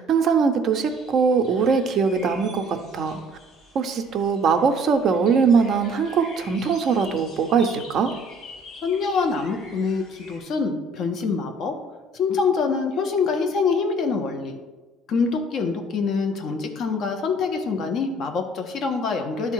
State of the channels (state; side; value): normal; both; correlation 0.56